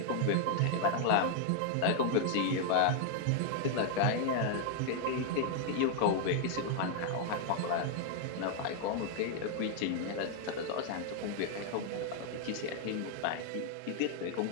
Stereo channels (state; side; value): different; both; correlation 0.00